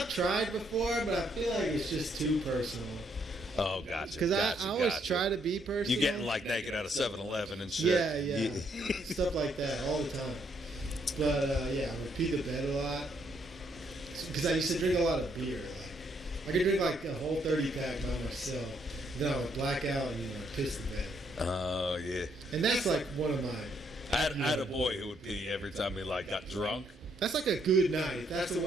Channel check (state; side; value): normal; both; correlation 0.72